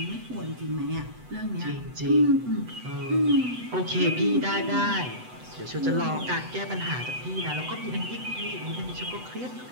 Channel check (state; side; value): late; left; 8.0 ms